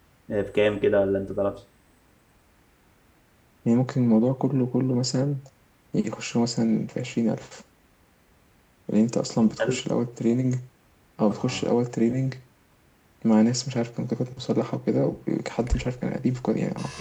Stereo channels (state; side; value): identical; both; correlation 1.00